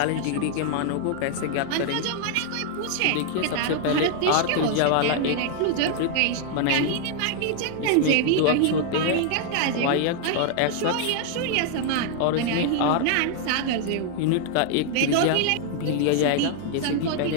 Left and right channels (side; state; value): both; different; correlation 0.00